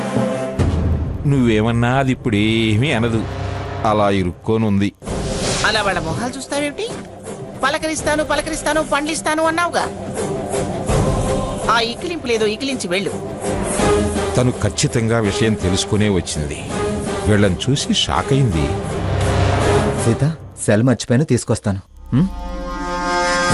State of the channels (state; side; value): identical; both; correlation 1.00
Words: నువ్వేమన్నా అది ఇప్పుడేమీ అనదు, అలా ఇరుక్కోనుంది. అలా వాళ్ళ మొహాలు చూస్తావేమిటి? పలకరిస్తాను పలకరిస్తాను పండ్లిస్తాను అన్నావుగా. ఆ ఇకిలింపు లేదో ఇకిలించి వెళ్ళు. తను ఖచ్చితంగా విషయం తెలుసుకునే వచ్చింది. వీళ్ళని చూసి షాక్ అయింది. సీత, సెల్ మర్చిపోయాను, తీసుకొస్తాను.